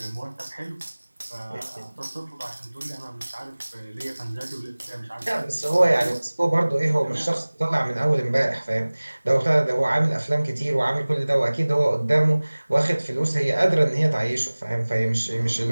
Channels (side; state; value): both; inverted; correlation -1.00